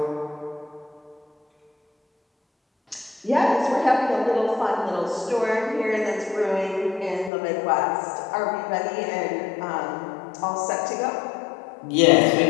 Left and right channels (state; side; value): drops out; right; at 7.3 s